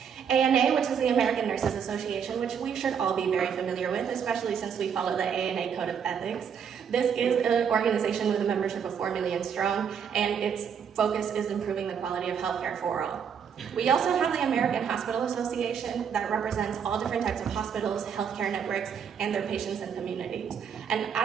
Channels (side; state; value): left; quieter; 7.4 dB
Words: ANA, which is the American Nurses Association, which we should all be very familiar with, especially since we follow the ANA Code of Ethics. This is an organization with a membership of 4 million strong, and its focus is improving the quality of healthcare for all. We also have the American Hospital Association that represents all different types of hospitals, healthcare networks, and their patients and communities. And I